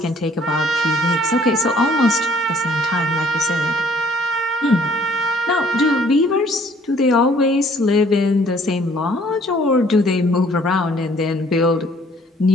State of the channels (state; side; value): normal; both; correlation 0.59